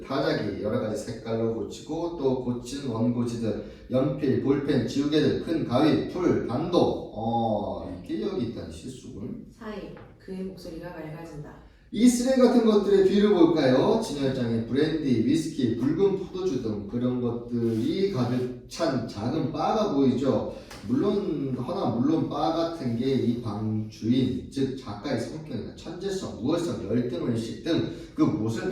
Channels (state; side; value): identical; both; correlation 1.00